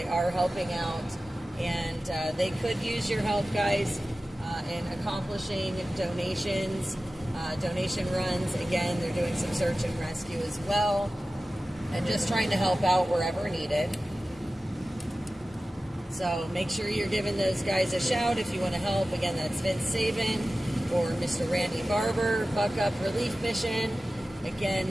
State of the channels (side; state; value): both; normal; correlation 0.95